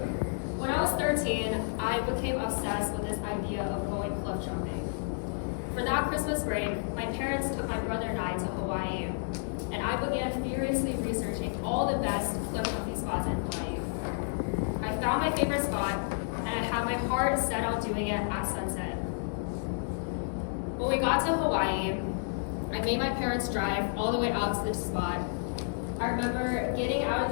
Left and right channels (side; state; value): right; silent; digital silence